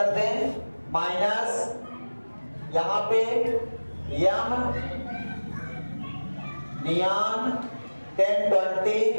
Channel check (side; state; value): both; inverted; correlation -1.00